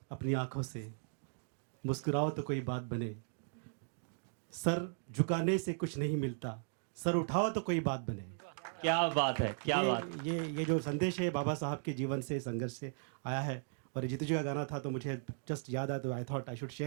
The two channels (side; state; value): left; silent; digital silence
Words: अपनी आंखों से, मुस्कुराओ तो कोई बात बने, सर झुकाने से कुछ नहीं मिलता, सर उठाओ तो कोई बात बने। क्या बात है, क्या बात। ये जो संदेश है बाबा साहब के जीवन से, संघर्ष से आया है। और जीतू जी का गाना था तो मुझे जस्ट याद आया, तो I thought I should